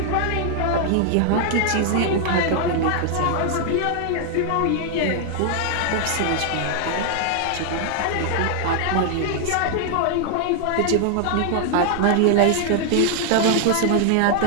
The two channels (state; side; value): different; both; correlation 0.00